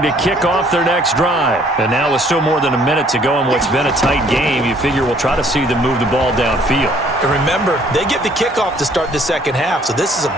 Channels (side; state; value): both; normal; correlation 0.60